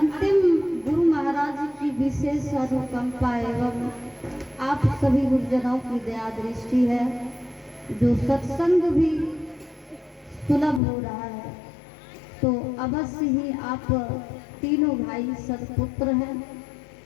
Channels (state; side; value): drops out; right; at 10.8 s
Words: गुरु महाराज की विशेष अनुकंपा एवं आप सभी गुरुजनों की दया दृष्टि है जो सत्संग भी सुलभ हो रहा है। तो अवश्य ही आप तीनों भाई सदपुत्र हैं